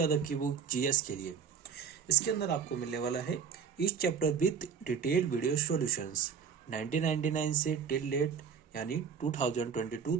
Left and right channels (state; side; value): quieter; left; 6.7 dB